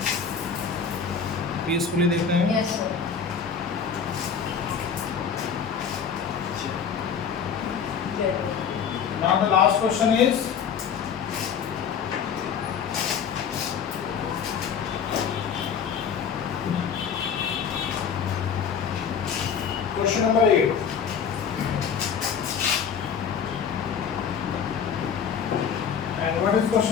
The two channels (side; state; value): right; quieter; 7.0 dB